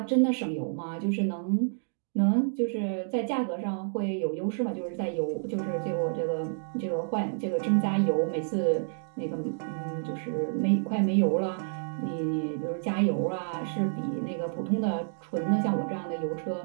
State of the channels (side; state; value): left; silent; digital silence